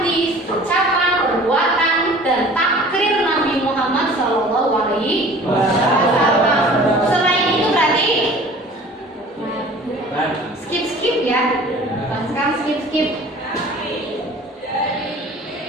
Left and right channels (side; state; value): both; normal; correlation 0.46